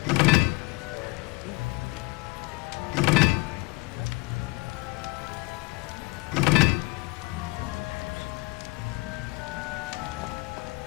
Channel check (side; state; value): right; quieter; 24.8 dB